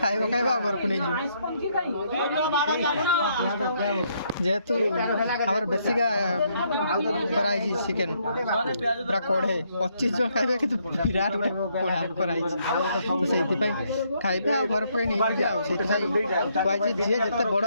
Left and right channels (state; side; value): inverted; both; correlation -0.72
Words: खाइबा घर को नहीं जी जेतु हमर बेसिका कराई जी चिकन पूरा कोढ़े 25 जो खाइबे कि विराट कोढ़ा कराई तो सेति पे खाइबे आ घर पे नहीं जा सेति पाई जे जे जते बड़